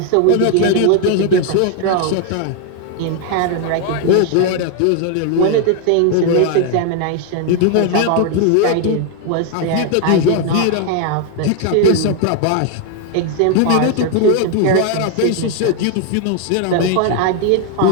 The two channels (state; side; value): different; both; correlation 0.00